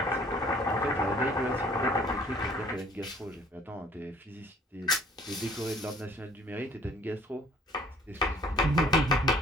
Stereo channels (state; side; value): normal; both; correlation 0.55